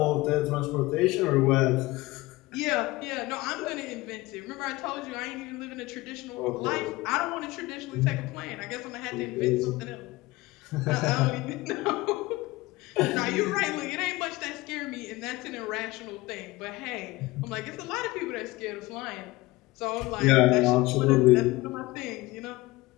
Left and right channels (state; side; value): quieter; right; 20.3 dB